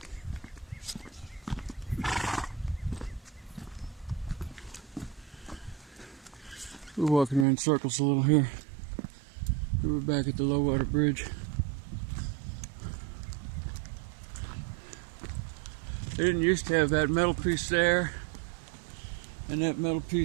We're walking around in circles a little here. We're back at the low water bridge. They didn't used to have that metal piece there and that metal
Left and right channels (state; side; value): drops out; left; at 7.5 s